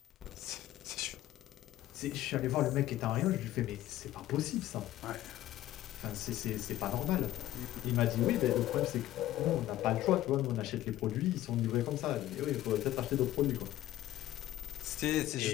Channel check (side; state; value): right; quieter; 14.4 dB